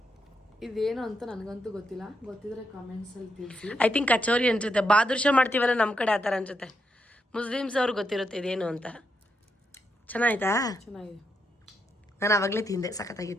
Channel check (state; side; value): normal; both; correlation 0.81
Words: ಇದೇನು ಅಂತ ನನಗಂತೂ ಗೊತ್ತಿಲ್ಲ, ಗೊತ್ತಿದ್ರೆ ಕಮೆಂಟ್ಸ್ ಅಲ್ಲಿ ತಿಳಿಸಿ. ಐ ಥಿಂಕ್ ಕಚೋರಿ ಅನ್ಸುತ್ತೆ. ಬಾದುರ್ಷ ಮಾಡ್ತೀವಲ್ಲ ನಮ್ಮ ಕಡೆ ಆ ಥರ ಅನ್ಸುತ್ತೆ. ಮುಸ್ಲಿಮ್ಸ್ ಅವ್ರಿಗೆ ಗೊತ್ತಿರುತ್ತೆ ಇದೇನು ಅಂತ. ಚೆನ್ನಾಯ್ತಾ? ಚೆನ್ನಾಗಿದೆ. ನಾನು ಆವಾಗಲೇ ತಿಂದೆ,